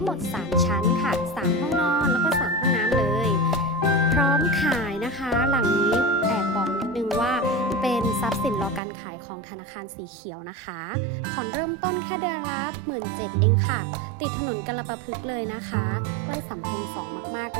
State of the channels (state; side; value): drops out; left; at 8.8 s